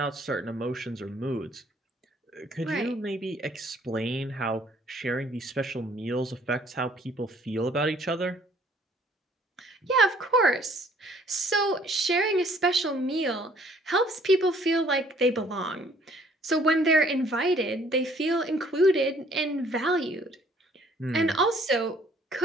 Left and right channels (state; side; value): normal; both; correlation 0.60